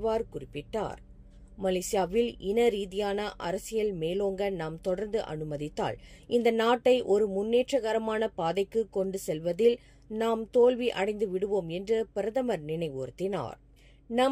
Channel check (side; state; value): both; identical; correlation 1.00